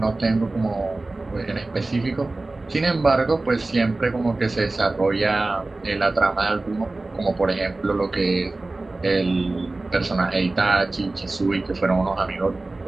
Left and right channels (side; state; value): left; quieter; 3.1 dB